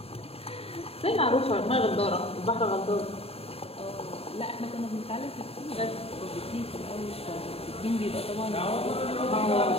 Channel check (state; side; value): late; right; 0.28 ms